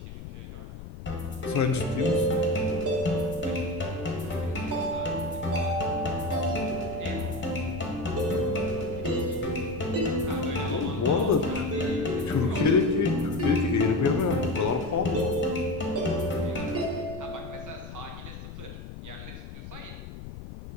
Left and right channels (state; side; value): noise; left; rumble, 12 dB below the sound